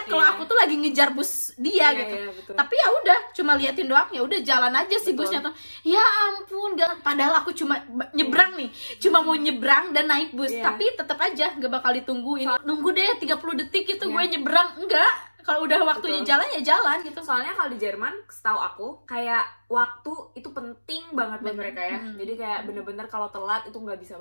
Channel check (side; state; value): both; inverted; correlation -1.00